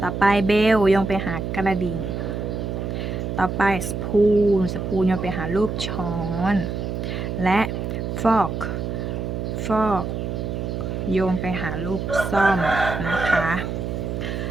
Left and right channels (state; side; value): noise; right; hum, 3 dB below the sound